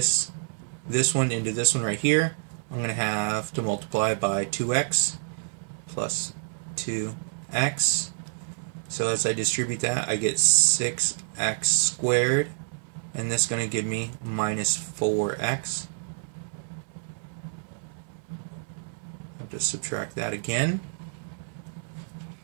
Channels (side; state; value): left; silent; 57 dB below the other